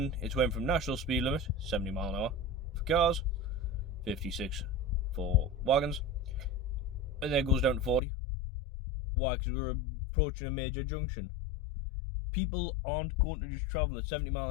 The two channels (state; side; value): drops out; right; at 8.0 s